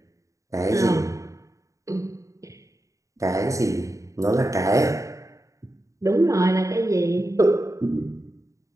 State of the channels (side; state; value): left; late; 0.15 ms